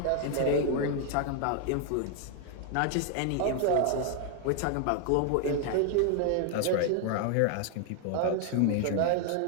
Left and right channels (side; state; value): both; different; correlation 0.00